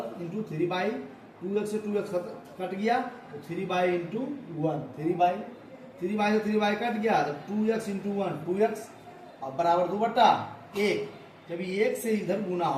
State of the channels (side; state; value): both; identical; correlation 1.00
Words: into 3y 2x से 2x कट गया तो 3y इंटू 1 3y से 3y कट गया तो 2x इंटू 1 2x और बराबर 2/1। जब ये 1 से इधर गुना